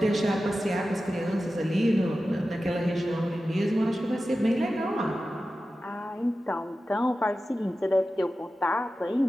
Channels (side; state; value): both; normal; correlation 0.93